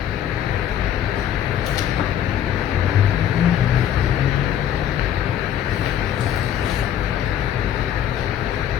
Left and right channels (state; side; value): quieter; right; 10.2 dB